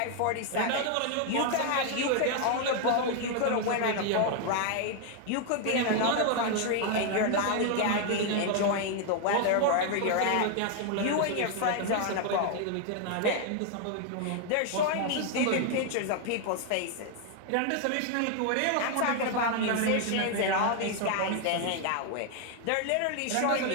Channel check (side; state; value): both; different; correlation 0.00